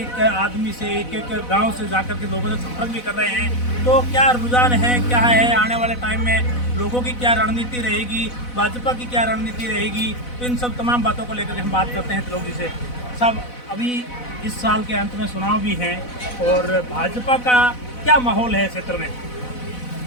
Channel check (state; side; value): late; right; 4.0 ms